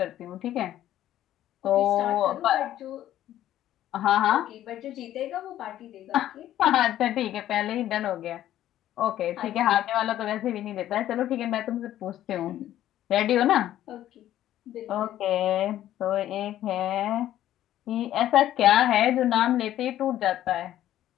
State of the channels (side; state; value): right; quieter; 12.7 dB